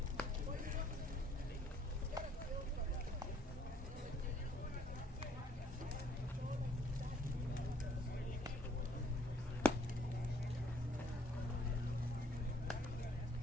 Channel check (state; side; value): normal; both; correlation 0.63